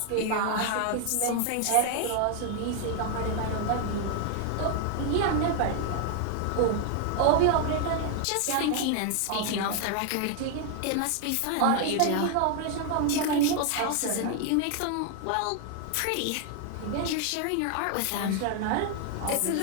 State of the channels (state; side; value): different; both; correlation 0.00